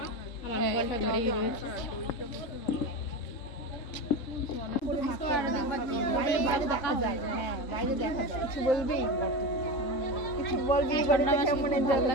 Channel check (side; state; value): right; late; 3.7 ms